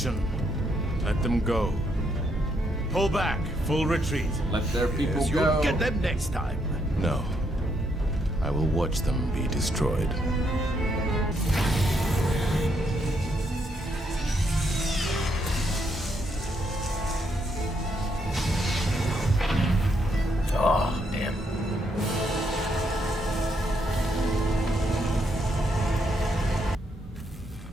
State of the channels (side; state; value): both; normal; correlation 0.76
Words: Let them go. Pull back. Full retreat. Let their people Yes, go. you'll get them next time. No. I will watch them be destroyed. Oh, damn.